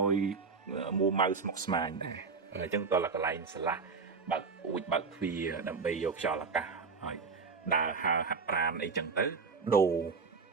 យមួម៉ៅស្មុគស្មាញដែរអញ្ចឹងតើកន្លែងស្រឡះបើកពូជបើកទ្វារដើម្បីយកខ្យល់អាកាសហើយដើរហើរហាត់ប្រាណអីចឹងទៅដូ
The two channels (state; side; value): quieter; left; 5.0 dB